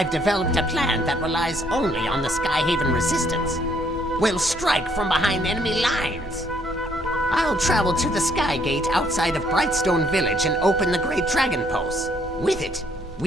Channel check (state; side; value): normal; both; correlation 0.67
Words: developed a plan that relies only on the Skyhaven resistance. We'll strike from behind enemy lines. I'll travel to the Sky Gate outside of Brightstone Village and open the Great Dragon Pulse. With it,